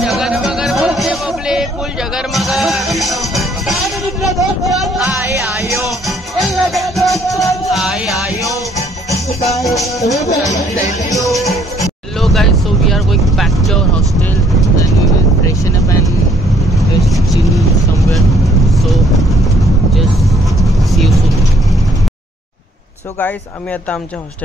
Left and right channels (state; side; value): normal; both; correlation 0.64